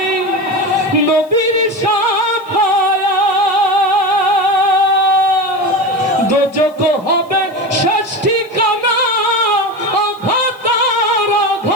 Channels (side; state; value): right; noise; hiss, 30 dB below the sound